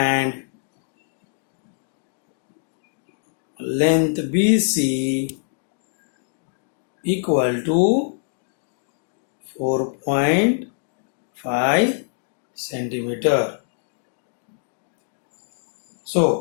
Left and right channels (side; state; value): right; silent; digital silence